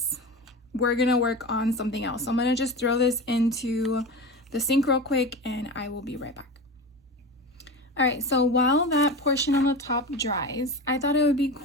we're gonna work on something else. So I'm gonna just throw this into the sink real quick and I will be right back. All right, so while that portion on the top dries, I thought it would be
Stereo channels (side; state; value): both; normal; correlation 0.27